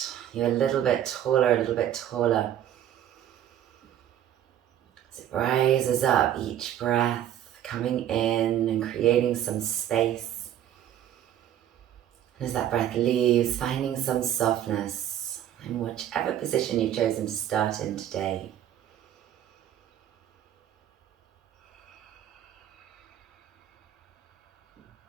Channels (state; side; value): quieter; left; 11.1 dB